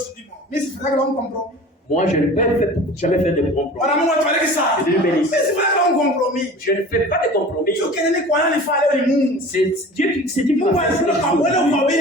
du monde. Moi, je ne peux jamais faire de compromis. Dieu bénisse. Je ne fais pas de compromis. C'est Dieu qui va faire ce que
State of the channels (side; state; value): both; normal; correlation 0.40